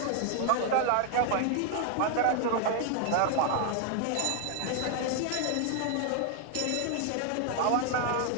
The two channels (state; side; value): different; both; correlation 0.00